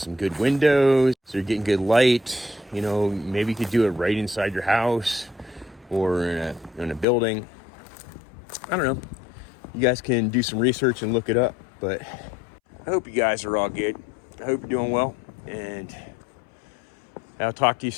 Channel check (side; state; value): right; drops out; at 7.1 s